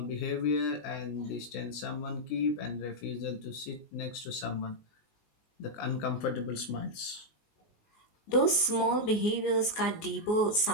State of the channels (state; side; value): late; right; 19 ms